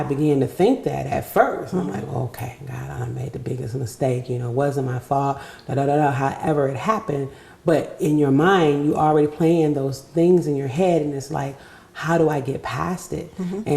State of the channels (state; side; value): identical; both; correlation 1.00